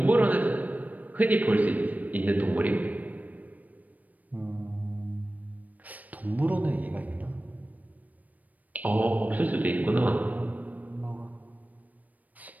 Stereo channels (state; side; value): late; left; 0.077 ms